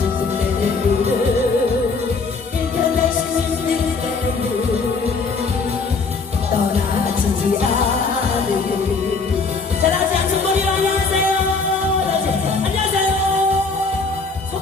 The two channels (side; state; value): right; quieter; 4.3 dB